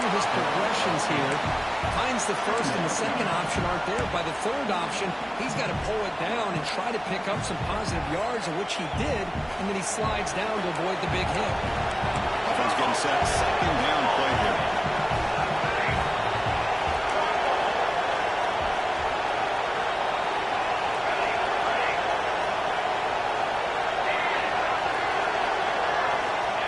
his progressions here. Finds the first and the second option aren't there. By the third option, he's got to pull it down and try to pick up some positive yards, of which he did, and then he slides down to avoid the big hit. Offense getting set. Second down play here.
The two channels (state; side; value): identical; both; correlation 1.00